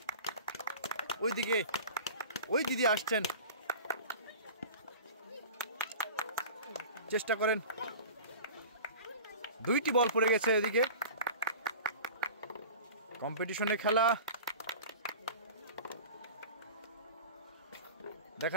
ওইদিকে ওই দিদি আসছেন। চেষ্টা করেন। 2টি বল পড়ে গেছে এদিকে। কম্পিটিশনে খেলা।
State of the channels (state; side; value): inverted; both; correlation -0.38